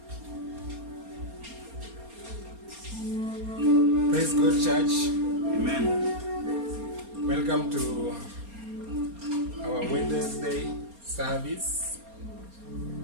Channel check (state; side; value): late; left; 4.3 ms